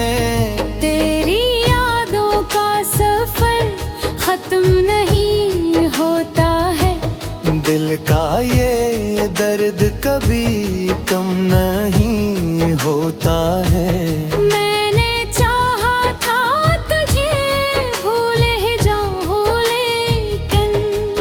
दिल का ये दर्द कभी कम नहीं होता है। मैंने चाहा था तुझे भूल ही जाऊं लेकिन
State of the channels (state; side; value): identical; both; correlation 1.00